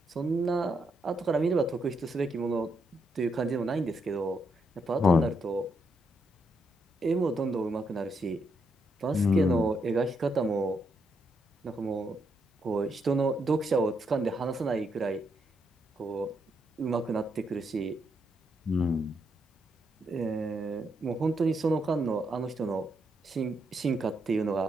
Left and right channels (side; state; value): both; normal; correlation 0.79